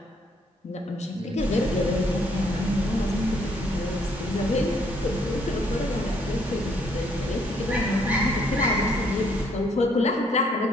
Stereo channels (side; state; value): both; normal; correlation 0.68